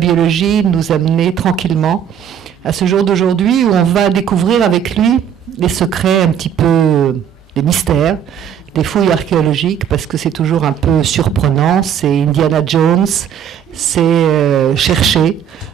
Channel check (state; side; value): quieter; left; 8.7 dB